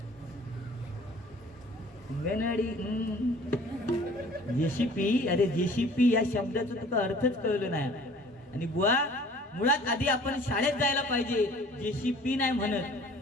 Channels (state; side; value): normal; both; correlation 0.50